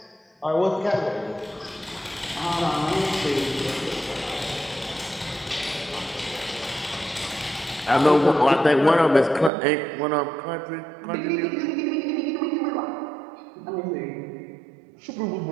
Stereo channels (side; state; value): left; drops out; at 9.5 s